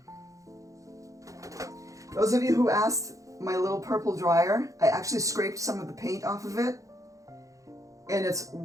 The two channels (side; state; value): left; late; 0.16 ms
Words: Those of you who asked my little purple dryer, I actually scraped some of the paint off of it. And it's